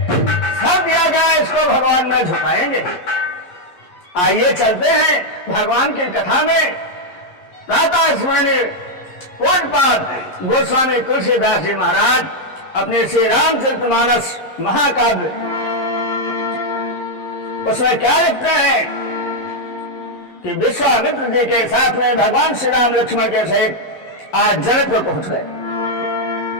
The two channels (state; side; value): late; right; 11 ms